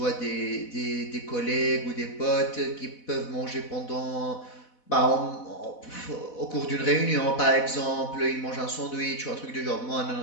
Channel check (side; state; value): right; late; 4.1 ms